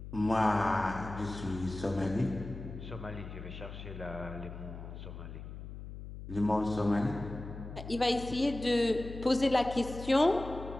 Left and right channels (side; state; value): left; noise; hum, 11 dB below the sound